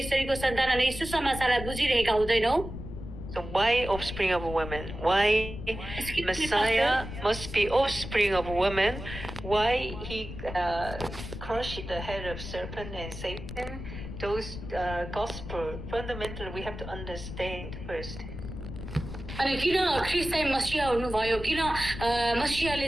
स्त्रीको सन्तान अनि सुसमाचारलाई बुझिरहेका हुँदैनौँ So why offspring of a woman? Why Messiah must be offspring of a woman? Why he crushed the head of serpent and Satan? Those gospel fundamentally we have to understand first. अनि किन ख्रीष्ट चाहिँ मसीहा हुनुभयो किन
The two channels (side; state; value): left; noise; rumble, 9 dB below the sound